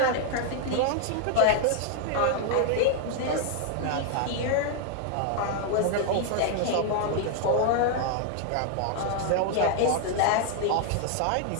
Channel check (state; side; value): different; both; correlation 0.00